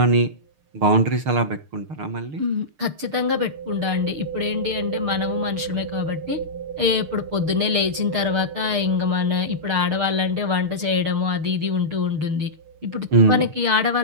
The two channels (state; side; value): late; left; 6.6 ms